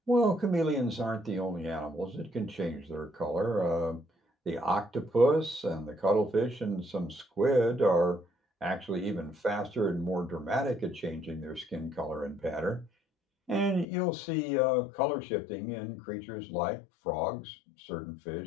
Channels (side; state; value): right; drops out; at 13.9 s